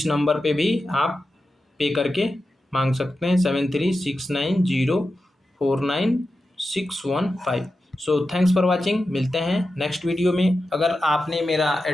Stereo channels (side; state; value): both; normal; correlation 0.91